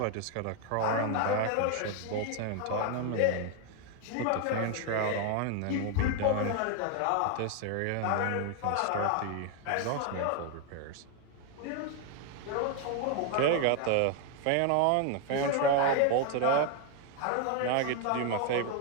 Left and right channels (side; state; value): both; different; correlation 0.01